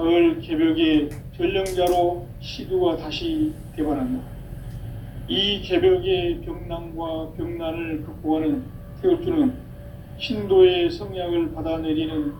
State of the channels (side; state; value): both; identical; correlation 1.00